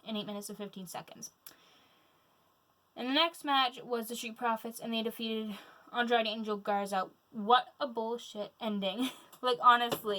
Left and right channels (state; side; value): identical; both; correlation 1.00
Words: in 8 minutes and 15 seconds. And the next match was the Street Profits, and they defeated Andrade Angel Garza. What a bullshit ending. Like,